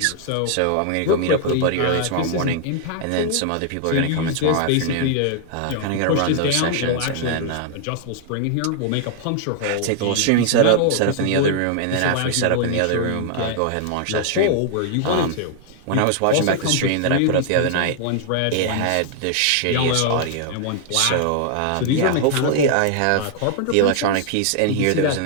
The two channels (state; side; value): different; both; correlation 0.00